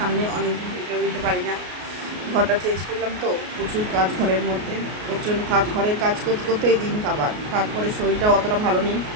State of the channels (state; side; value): late; left; 33 ms